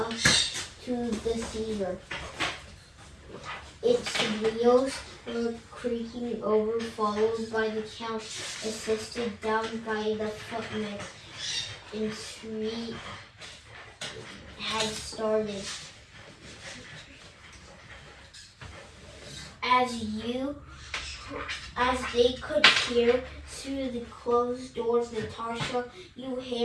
to the cedar. Its wheels were creaking over, followed by the count, assisted down by the footman, and street had started. As they could hear through the closed doors, Natasha, you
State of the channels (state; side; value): identical; both; correlation 1.00